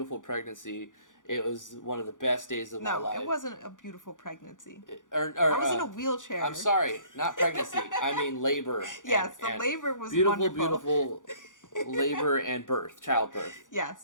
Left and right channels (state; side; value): late; right; 0.87 ms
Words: pregnancy. It was one of the best days of my life. No, it wasn't a beautiful pregnancy. I was in a wheelchair. I'm sorry, not pregnancy. I mean labor. Yes, the labor was wonderful. Beautiful labor and childbirth.